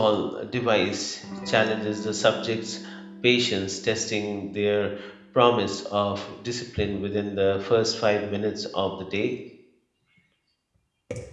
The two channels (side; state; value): both; identical; correlation 1.00